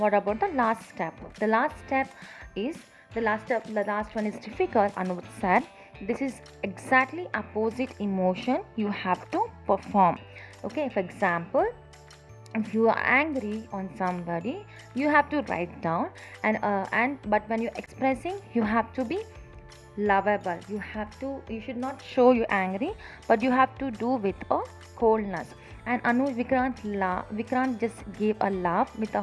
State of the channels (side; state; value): both; identical; correlation 1.00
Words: about the last step? The last step is the last one is difficult. Anuj said, this is exactly opposite emotion you have to perform. Okay, for example, if you are angry on somebody, you have to write down, and but when you're expressing, you have to be lovable. You should not show you angry, but you have to do with a coldness. And Vikrant just gave a laugh with a